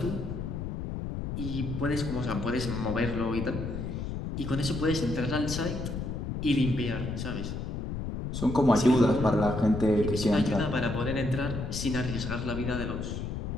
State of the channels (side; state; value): left; noise; rumble, 4 dB below the sound